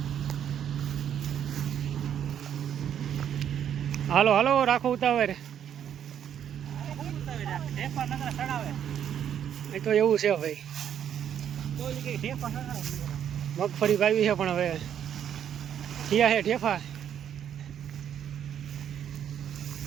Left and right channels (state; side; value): quieter; left; 9.4 dB